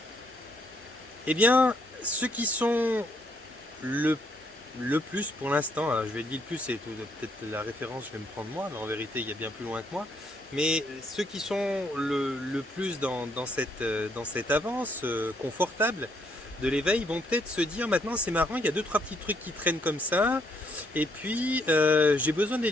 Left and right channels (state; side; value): normal; both; correlation 0.71